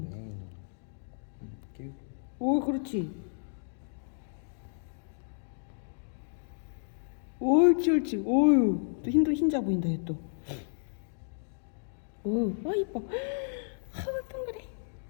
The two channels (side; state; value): right; silent; digital silence